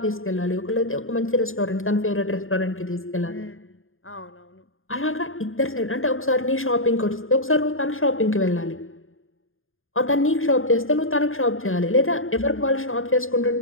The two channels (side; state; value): right; late; 0.60 ms